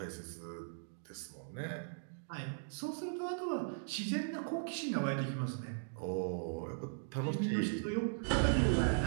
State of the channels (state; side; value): silent; left; digital silence